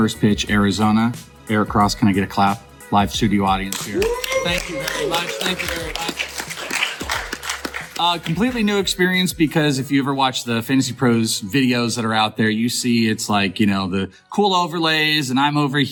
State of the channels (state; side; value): identical; both; correlation 1.00